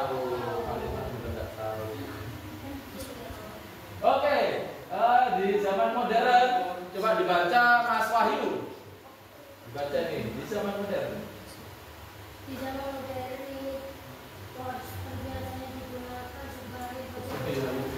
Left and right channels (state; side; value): identical; both; correlation 1.00